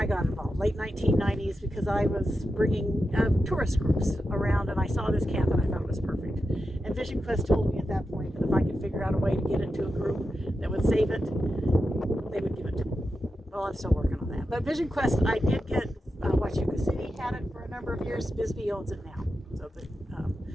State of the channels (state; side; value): normal; both; correlation 0.89